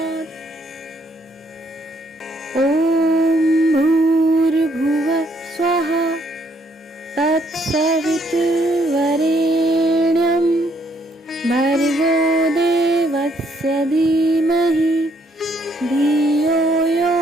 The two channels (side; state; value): both; normal; correlation 0.69